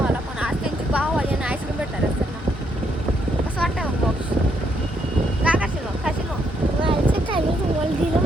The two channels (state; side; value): normal; both; correlation 0.74